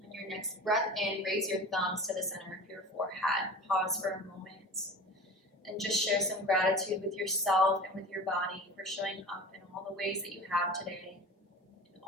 On your next breath in, raise your thumbs to the center of your forehead. Pause for a moment and just share some gratitude with yourself and with your body for showing up in all the ways that you have today, in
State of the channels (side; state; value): both; normal; correlation 0.36